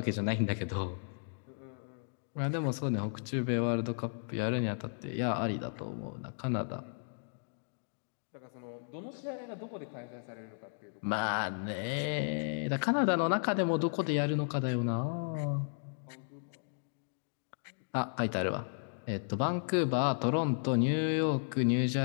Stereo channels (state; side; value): silent; right; digital silence